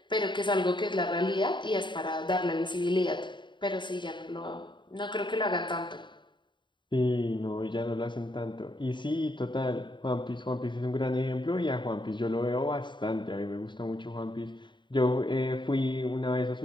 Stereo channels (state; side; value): late; right; 0.23 ms